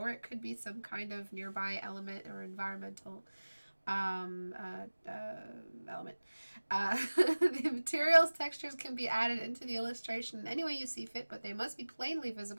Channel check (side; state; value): both; inverted; correlation -1.00